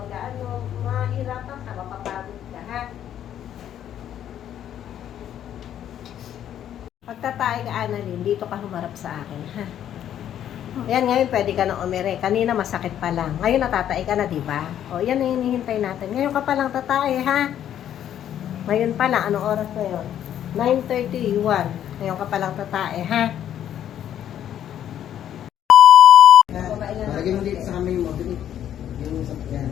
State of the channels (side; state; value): right; quieter; 10.5 dB